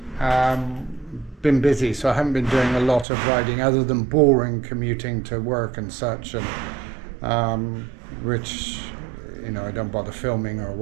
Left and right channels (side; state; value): left; drops out; at 3.1 s